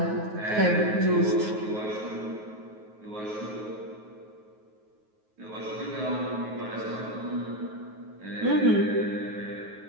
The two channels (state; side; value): late; left; 9.4 ms